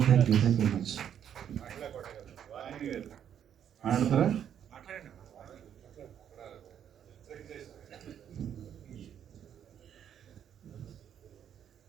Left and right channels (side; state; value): left; quieter; 9.2 dB